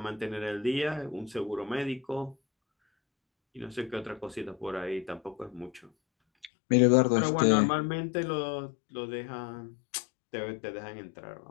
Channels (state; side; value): drops out; right; at 6.5 s